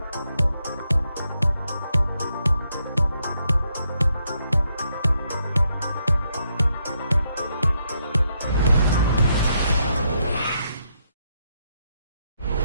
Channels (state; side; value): inverted; both; correlation -0.78